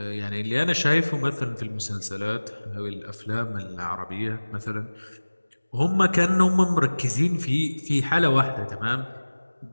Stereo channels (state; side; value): inverted; both; correlation -1.00